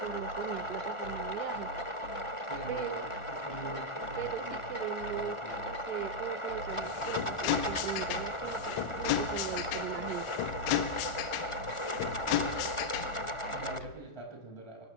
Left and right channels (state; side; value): late; right; 1.4 ms